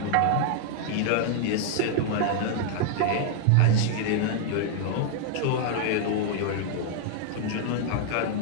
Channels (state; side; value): different; both; correlation 0.00